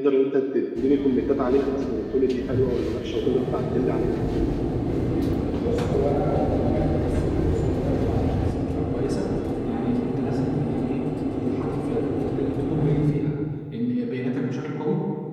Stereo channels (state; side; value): identical; both; correlation 1.00